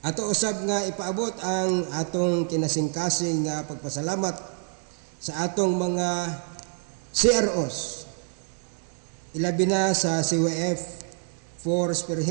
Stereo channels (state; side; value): silent; left; 56 dB below the other